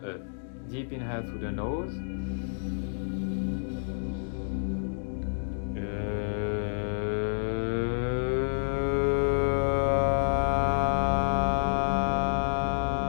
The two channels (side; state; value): right; silent; digital silence